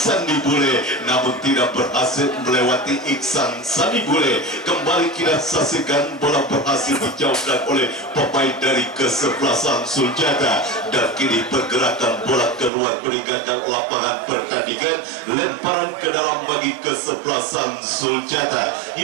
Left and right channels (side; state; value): left; drops out; at 12.7 s